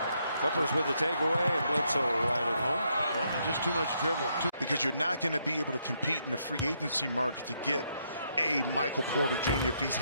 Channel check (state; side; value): inverted; both; correlation -0.76